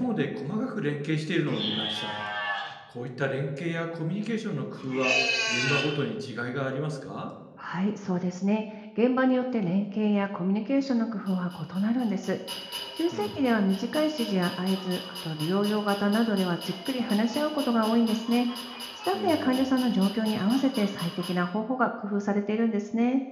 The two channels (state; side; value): identical; both; correlation 1.00